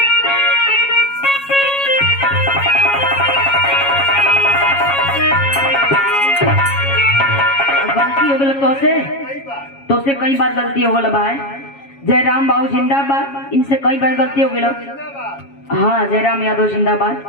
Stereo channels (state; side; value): late; right; 7.2 ms